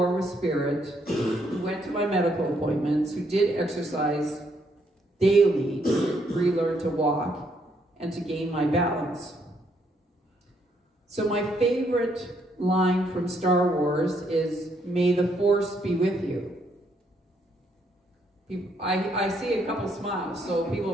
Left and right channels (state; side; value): normal; both; correlation 0.73